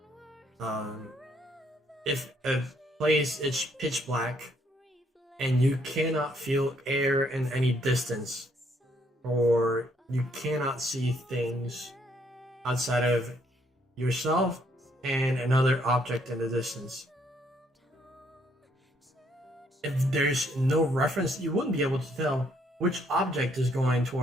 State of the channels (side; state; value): both; normal; correlation 0.69